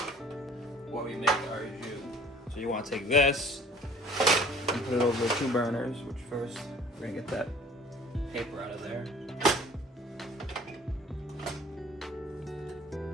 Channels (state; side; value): normal; both; correlation 0.51